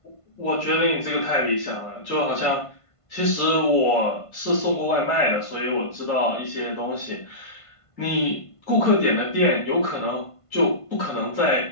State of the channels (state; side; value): late; right; 1.5 ms